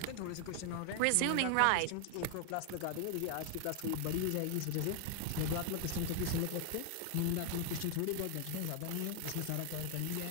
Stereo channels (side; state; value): both; different; correlation 0.00